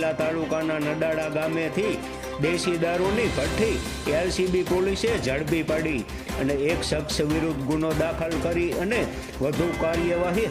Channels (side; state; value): both; identical; correlation 1.00